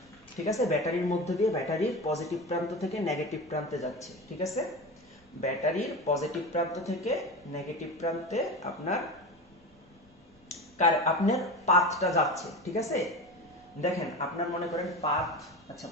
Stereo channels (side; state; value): both; normal; correlation 0.26